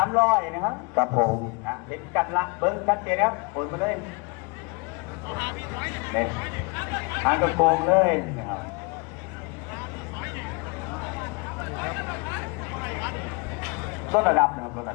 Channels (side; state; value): right; quieter; 29.1 dB